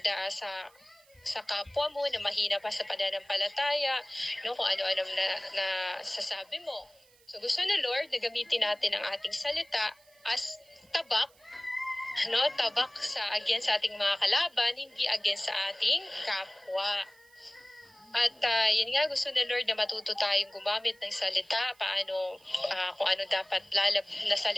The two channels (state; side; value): noise; right; hiss, 30 dB below the sound